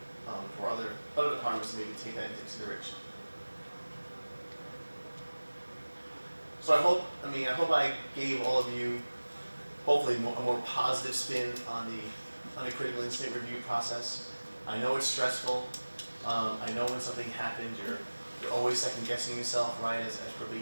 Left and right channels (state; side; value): inverted; both; correlation -1.00